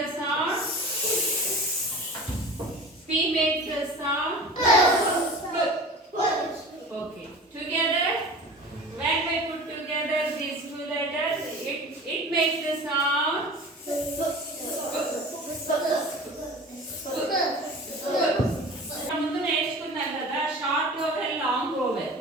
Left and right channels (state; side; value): normal; both; correlation 0.38